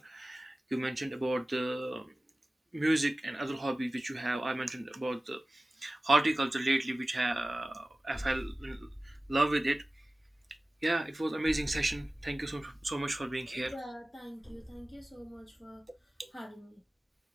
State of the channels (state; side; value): normal; both; correlation 0.97